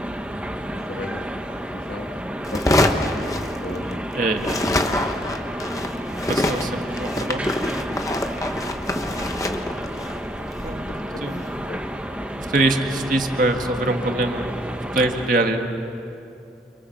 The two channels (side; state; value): both; normal; correlation 0.66